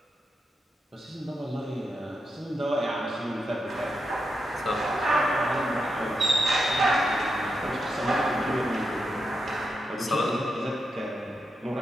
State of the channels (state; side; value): normal; both; correlation 0.86